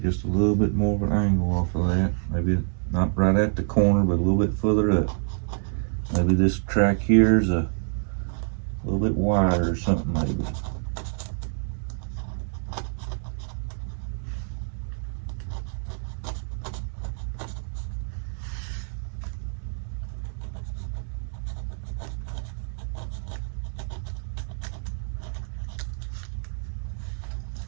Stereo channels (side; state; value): left; silent; 60 dB below the other